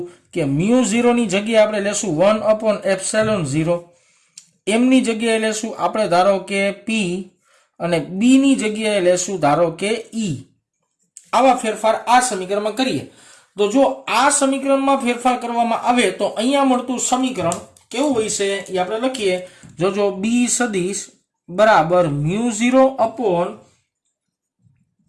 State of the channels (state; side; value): identical; both; correlation 1.00